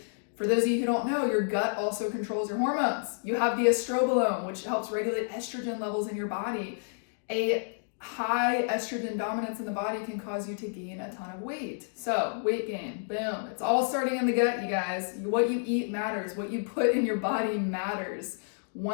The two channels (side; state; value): right; silent; digital silence